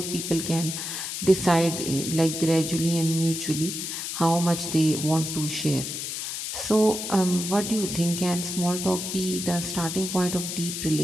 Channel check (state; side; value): noise; left; hiss, 5 dB below the sound